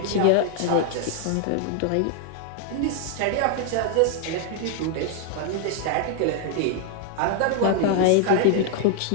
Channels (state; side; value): different; both; correlation 0.00